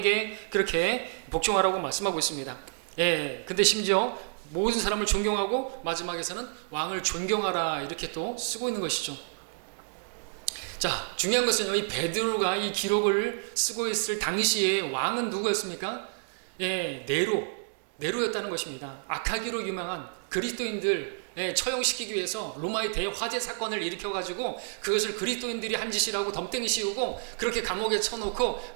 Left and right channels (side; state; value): left; silent; digital silence